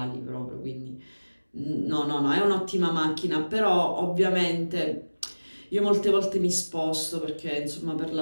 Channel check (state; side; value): inverted; both; correlation -1.00